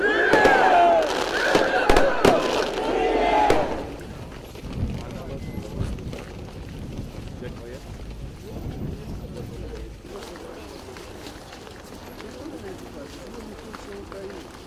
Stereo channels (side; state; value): both; identical; correlation 1.00